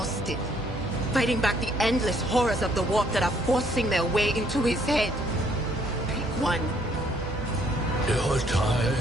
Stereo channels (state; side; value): normal; both; correlation 0.66